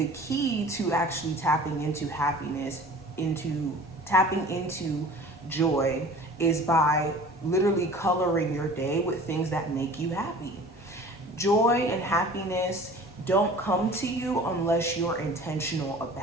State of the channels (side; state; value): both; normal; correlation 0.43